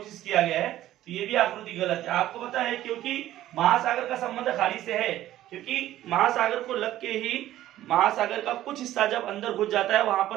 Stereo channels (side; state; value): left; quieter; 13.8 dB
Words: किया गया है, तो ये भी आकृति गलत है। आपको पता है क्योंकि महासागर का संबंध खाड़ी से है, क्योंकि महासागर को लग के ही महासागर का कुछ हिस्सा जब अंदर घुस जाता है वहां